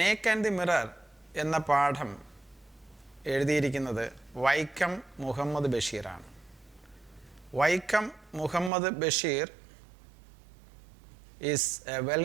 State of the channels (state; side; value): drops out; left; at 8.7 s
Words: and the mirror എന്ന പാഠം എഴുതിയിരിക്കുന്നത് വൈക്കം മുഹമ്മദ് ബഷീറാണ്. Vaikom Muhammad Basheer is a well